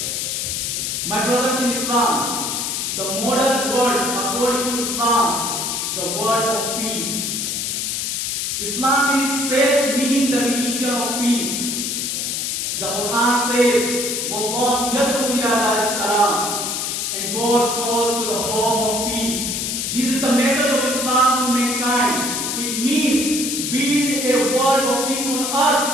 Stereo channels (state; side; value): noise; left; hiss, 1 dB below the sound